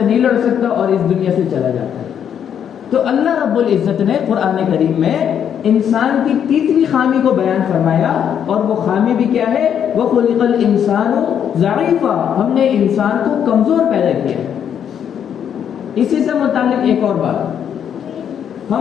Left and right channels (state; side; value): quieter; right; 8.7 dB